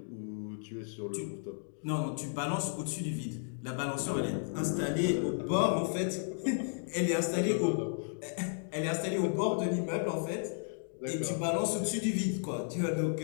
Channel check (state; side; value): silent; right; digital silence